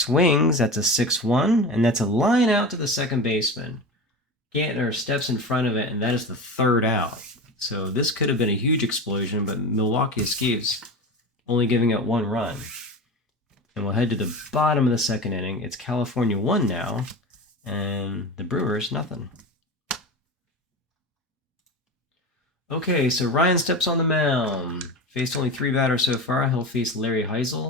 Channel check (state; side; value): normal; both; correlation 0.28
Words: That's a 6-1, and that's a line out to the second baseman. Gantner steps in front of it, and that is the third out. So this could have been a huge explosion, but Milwaukee escapes, only giving up 1 run. And we'll head to the bottom of the second inning. It's California 1 now, and the Brewers nothing. Okay, so Ryan steps on the mound. Faced only 3 batters so far. He'll face Larry